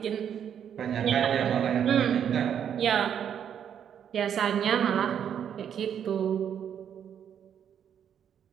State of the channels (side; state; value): left; quieter; 8.8 dB